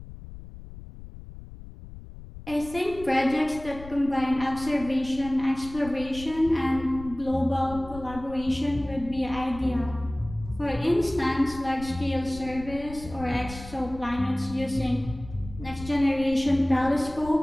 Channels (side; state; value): left; noise; rumble, 14 dB below the sound